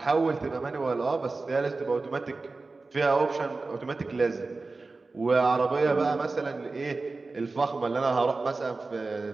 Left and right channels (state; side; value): quieter; left; 3.7 dB